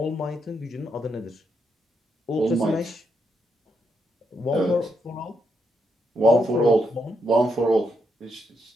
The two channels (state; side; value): normal; both; correlation 0.80